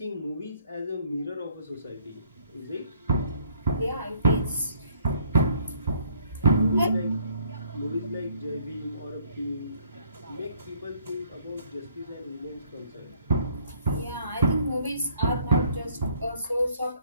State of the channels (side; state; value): both; inverted; correlation -0.63